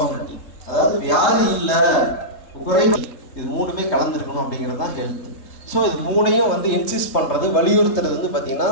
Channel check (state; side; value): late; right; 3.2 ms